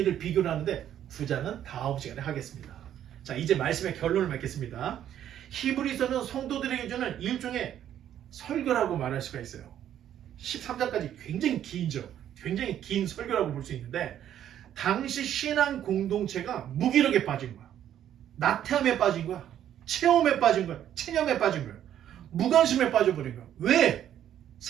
비교를 하는데 9장은 다음 시간에 하겠습니다. 자, 이제 말씀의 결론을 맺겠습니다. 히브리서는 성도들에게 주는 일종의 설교라고 말할 수가 있어요. 13장까지 굉장히 긴죠. 굉장히 긴 설교라고 볼 수 있는데 당시 신앙 공동체가 무기력에 빠진 거야. 나태함에 빠진 거야. 체험에 빠진 거야. 체념에 빠진 거야. 무관심에 빠져버린 거야. 왜?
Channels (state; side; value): quieter; left; 10.7 dB